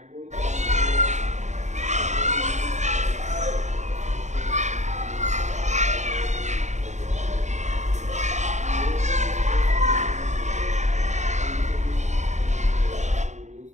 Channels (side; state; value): left; late; 0.34 ms